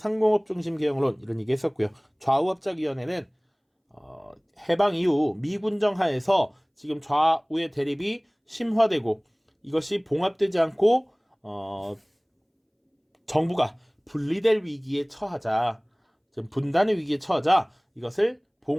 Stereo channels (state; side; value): identical; both; correlation 1.00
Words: 이런 얘기했었고요. 좌우합작위원회는 해방 이후 미군정 하에서 지금 좌우의 대립이 심화되고 이것이 봉합되지 않고 정부가 분리될 위기에 처하자, 분단의 위기에 처하자 이것을